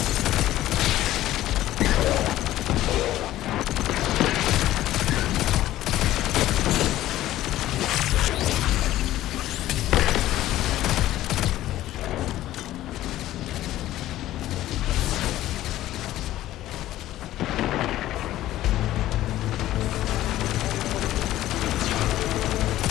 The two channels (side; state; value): right; quieter; 14.4 dB